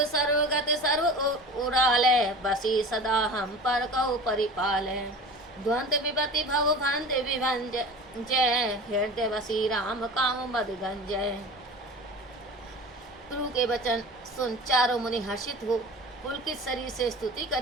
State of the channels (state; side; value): normal; both; correlation 0.36